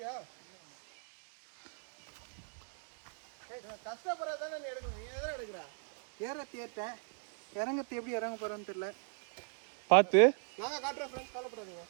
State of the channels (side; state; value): left; silent; 52 dB below the other